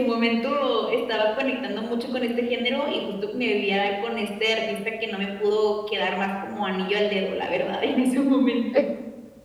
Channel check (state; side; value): identical; both; correlation 1.00